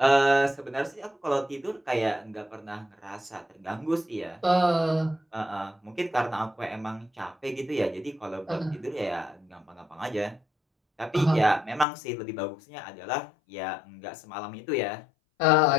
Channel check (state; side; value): drops out; right; at 11.9 s